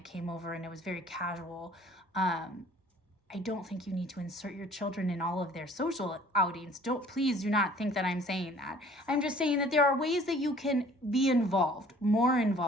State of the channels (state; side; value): normal; both; correlation 0.52